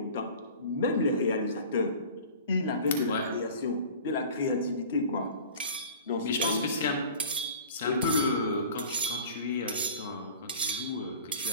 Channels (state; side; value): inverted; both; correlation -0.42